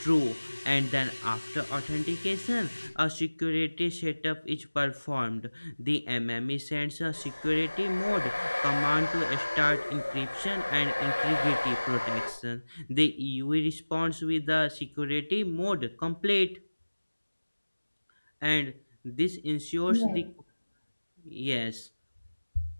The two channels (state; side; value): inverted; both; correlation -1.00